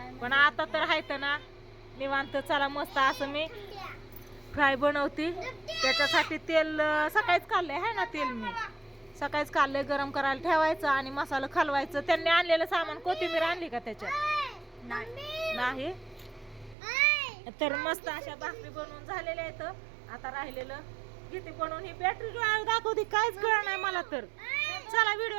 पण आता तर हायत ना निवांत. चला मस्त असं मी फ्राय बनवते. त्याच्यासाठी तेल सकाळीच काढलंय आहे ना, तेल मी सकाळीच काढलंय. गरम करायला ठेवायचं आणि मसाला खालवायचं. त्यांनी आणलेलं सामान, कोथिंबीर आणली का त्याच्यात? नाही. तर मस्त अशा भाकरी बनवून झालेल्या आहेत. आता राहिलेलं किती बनवून ही बॅटरी दाखवते, काहीच कळलं नाही मला तर. चला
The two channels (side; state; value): left; drops out; at 16.8 s